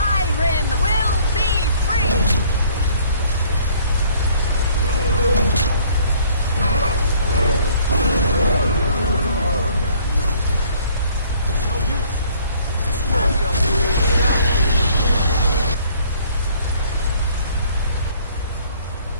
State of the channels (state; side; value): inverted; both; correlation -0.58